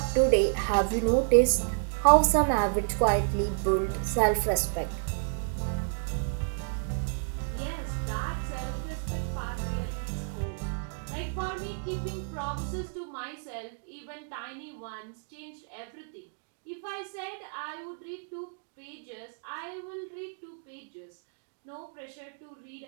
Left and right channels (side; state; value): left; silent; digital silence